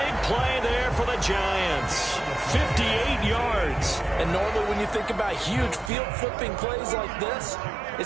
play there for the Giants. 58 yards. And normally when you think about huge field-flipping plays like this,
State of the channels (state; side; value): drops out; left; at 5.9 s